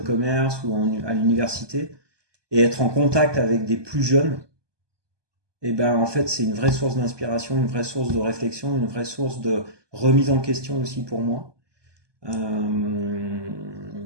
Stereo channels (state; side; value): late; left; 1.2 ms